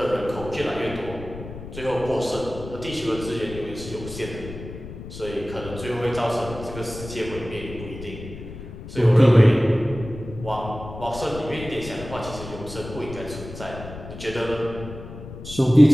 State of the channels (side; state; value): left; noise; rumble, 12 dB below the sound